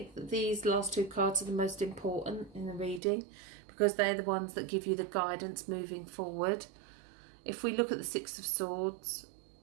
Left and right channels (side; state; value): left; drops out; at 3.0 s